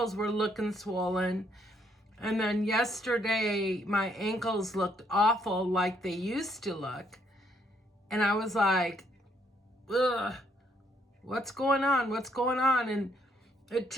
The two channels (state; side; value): normal; both; correlation 0.70